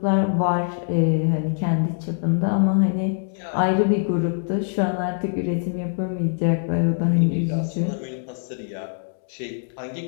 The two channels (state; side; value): silent; right; digital silence